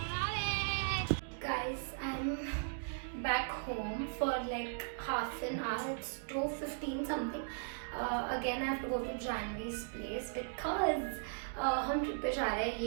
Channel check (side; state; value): left; silent; digital silence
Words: Guys, I'm back home for like half an hour. It's 2:15 something. Again, I have to go to Janvi's place because हम ट्रिप पे जा रहे हैं.